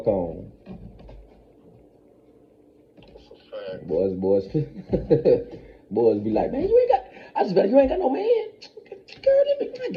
on. That's a fact. Boys be like, man, you ain't got no man. Girl, I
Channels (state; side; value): identical; both; correlation 1.00